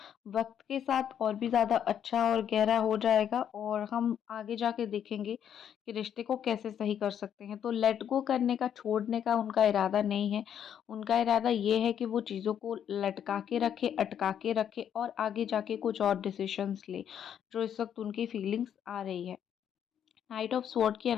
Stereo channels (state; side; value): quieter; right; 9.1 dB